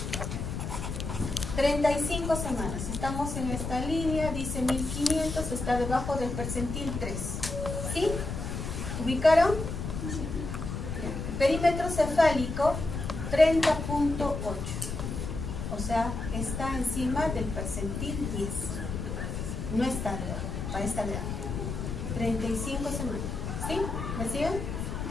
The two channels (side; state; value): left; noise; rumble, 4 dB below the sound